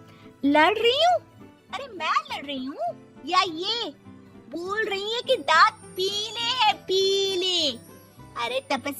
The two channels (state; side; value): identical; both; correlation 1.00